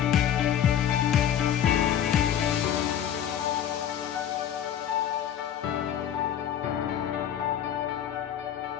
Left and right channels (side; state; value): right; quieter; 9.8 dB